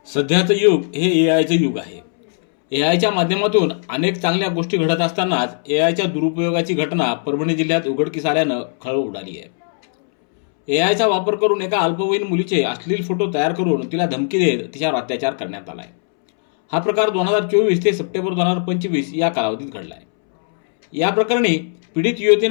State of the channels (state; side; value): silent; right; 67 dB below the other